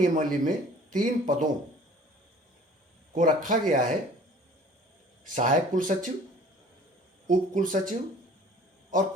में 3 पदों को रखा गया है: सहायक कुलसचिव, उप कुलसचिव और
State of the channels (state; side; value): normal; both; correlation 0.49